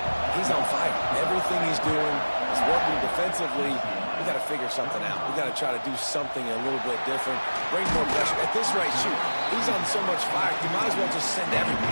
He's on fire. Everything he's doing is working defensively. We got to figure something out. We got to try to do something a little bit different. Bring more pressure. At this rate, shoot, he's on so much fire. You might as well just send everybody.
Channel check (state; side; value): inverted; both; correlation -1.00